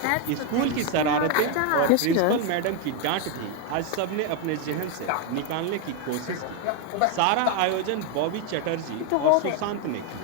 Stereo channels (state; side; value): different; both; correlation 0.02